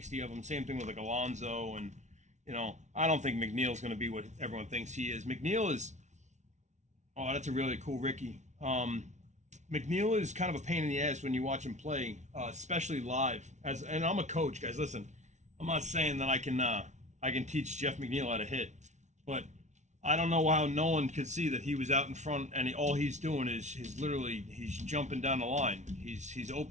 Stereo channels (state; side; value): late; left; 0.34 ms